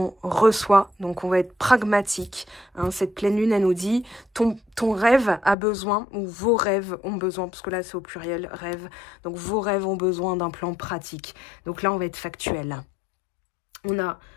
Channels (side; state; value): right; drops out; at 5.6 s